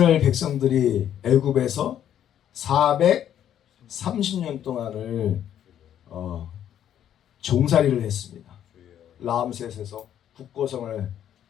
백성들이 애굽에서 430년 동안을 종살이를 했습니다. 라암셋에서 북고성을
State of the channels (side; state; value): right; quieter; 10.3 dB